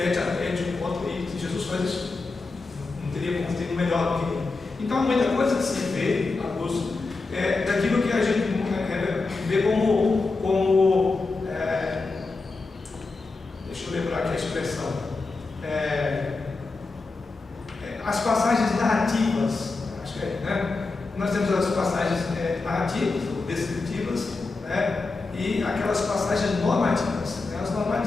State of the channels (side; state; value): right; quieter; 3.8 dB